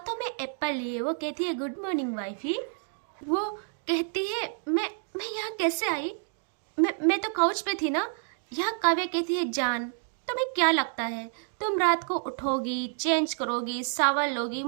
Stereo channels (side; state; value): left; silent; 59 dB below the other